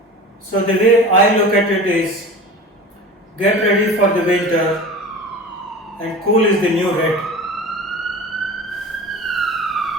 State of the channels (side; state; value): both; normal; correlation 0.35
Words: So the way I look at it is, get ready for the winter, and cool is the new red.